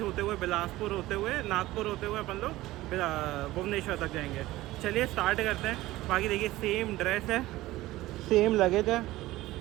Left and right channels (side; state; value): left; quieter; 17.3 dB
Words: हुए, बिलासपुर होते हुए, नागपुर होते हुए अपन लोग भुवनेश्वर तक जाएंगे। चलिए स्टार्ट करते हैं। बाकी देखिए सेम ड्रेस है, सेम लगेज है